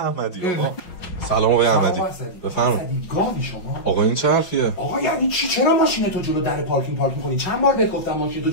آقا. سلام آقای احمدی. بفرمایید. گاوی شما؟ آقا این چه حرفیه؟ آقا یعنی چی؟ چرا ماشین تو جلو در پارکینگ کنی؟ چند بار بهت گفتم ماشین تو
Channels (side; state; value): right; late; 5.5 ms